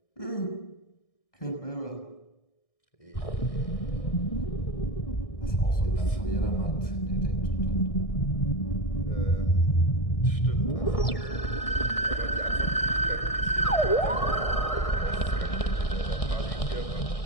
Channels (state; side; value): late; right; 1.6 ms